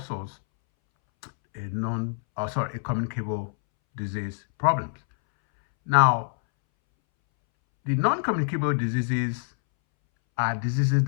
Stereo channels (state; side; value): silent; right; 61 dB below the other